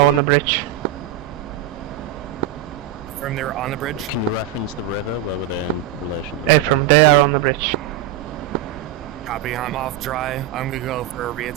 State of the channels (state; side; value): quieter; left; 11.0 dB